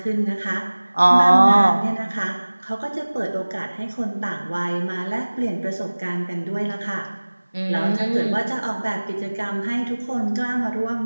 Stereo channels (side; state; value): both; inverted; correlation -1.00